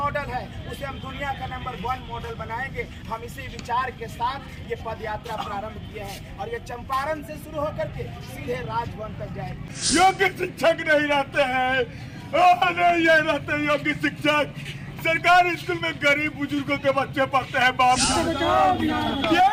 है, उसे हम दुनिया का नंबर 1 मॉडल बनाएंगे। हम इसी विचार के साथ ये पद यात्रा प्रारंभ किया है और ये चंपारण से शुरू होकर के सीधे राजभवन तक जाएगी। योग्य शिक्षक नहीं रहते हैं, नहीं ये रहते योग्य शिक्षक। सरकारी स्कूल में गरीब बुजुर्गों के बच्चे पढ़ते हैं बापू।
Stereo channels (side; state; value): both; identical; correlation 1.00